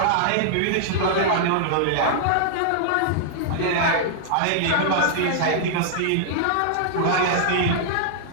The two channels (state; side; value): different; both; correlation -0.01